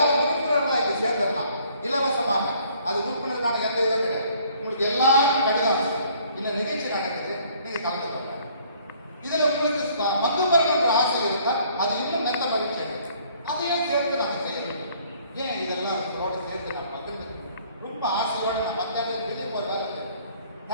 உறுப்பினர்களா இங்க சேர்ந்துடலாம் இலவசமாக. அது உறுப்பினருக்கான எந்த இதுவும் கிடையாது. உங்களுக்கு எல்லாரும் கடிதம் இந்த நிகழ்ச்சி நடக்குது, நீங்க கலந்துக்கலாம். இதுல உங்களுக்கு பங்கு பெறணுன்ற ஆசை இருந்தா அது இன்னும் நல்ல மகிழ்ச்சி. அதையும் சேர்த்து நாங்க செய்யணும். ஏன் இதெல்லாம் சேர்த்து நான் பகிர்ந்து ரொம்ப ஆசையோட நான் மத்தியானம் வெளியே போய் வேலை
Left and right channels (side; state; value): both; inverted; correlation -0.60